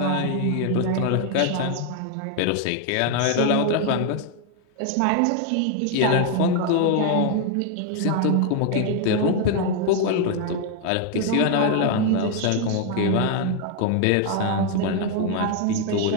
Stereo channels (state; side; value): different; both; correlation 0.00